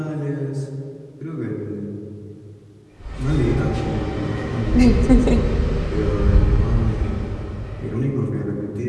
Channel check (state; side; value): identical; both; correlation 1.00